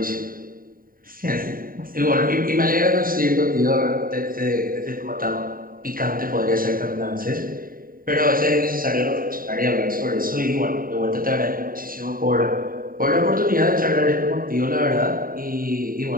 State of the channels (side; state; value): left; late; 0.41 ms